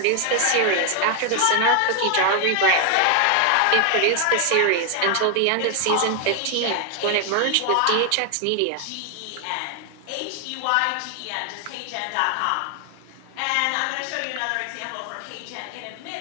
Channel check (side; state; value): both; different; correlation 0.01